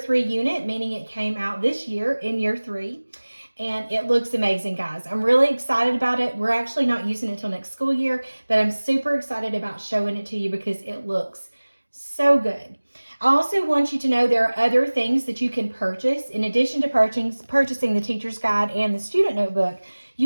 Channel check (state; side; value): inverted; both; correlation -1.00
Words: unit, meaning it came out this year in year 3. And it looks amazing, guys. I'm really excited about it. We're actually not using it until next school year, but I'm super excited about showing it to you because it looks so good. I also want you to know there are other things that you can purchase. In addition to purchasing the teacher's guide and the student notebook,